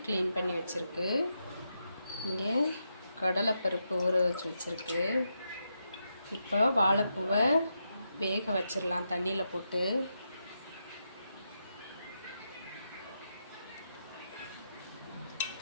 க்ளீன் பண்ணி வச்சுருக்கு. இங்கே கடலைப்பருப்பு ஊற வச்சுருக்கு. இப்போ வாழைப்பூவை வேக வச்சிடலாம் தண்ணியில் போட்டு.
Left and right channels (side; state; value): both; inverted; correlation -0.84